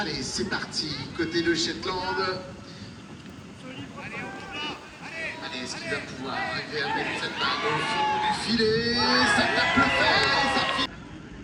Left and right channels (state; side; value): identical; both; correlation 1.00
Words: c'est parti, côté de Shetland. Allez, est-ce qu'il va pouvoir arriver à mettre cette balle au fond du filet? Ça tape le fer, ça finit.